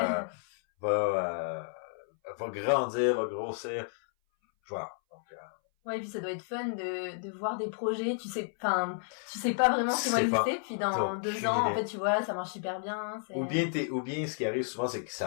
va grandir, va grossir. Voilà. Donc, ouais, et puis ça doit être fun de voir des projets, tu sais pas vraiment ce qu'ils vont exister, puis dans 2 ans, en fait, tu vois, ça marche super bien. Ou bien ce qui arrive souvent, c'est que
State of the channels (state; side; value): silent; right; 57 dB below the other